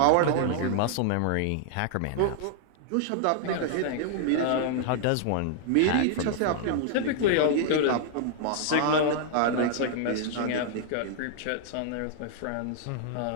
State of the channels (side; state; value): both; different; correlation -0.01